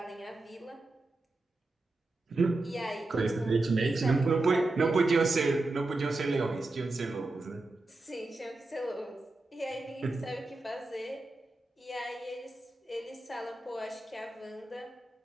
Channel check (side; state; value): left; quieter; 3.0 dB